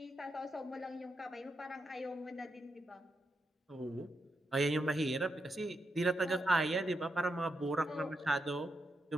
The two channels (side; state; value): both; normal; correlation 0.84